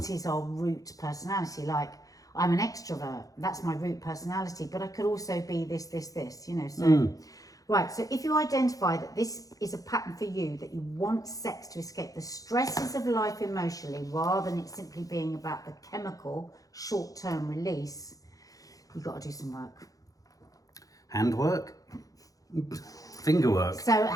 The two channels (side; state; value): right; late; 0.17 ms